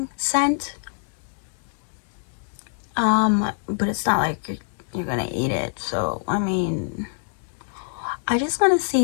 scent. But it's not like you're gonna eat it. So I mean, I just want to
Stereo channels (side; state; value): right; silent; 62 dB below the other